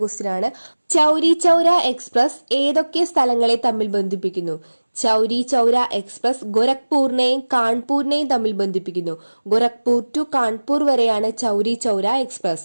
ക്വസ്റ്റ്യൻ ആണ്. ചൗരി ചൗര എക്സ്പ്രസ് ഏതൊക്കെ സ്ഥലങ്ങളെ തമ്മിൽ ബന്ധിപ്പിക്കുന്നു? ചൗരി ചൗര എക്സ്പ്രസ് ഗോരഖ്പൂരിനെയും കാൺപൂരിനെയും തമ്മിൽ ബന്ധിപ്പിക്കുന്നു. ഗോരഖ്പൂർ ടു കാൺപൂർ വരെയാണ് ചൗരി ചൗര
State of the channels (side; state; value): both; inverted; correlation -1.00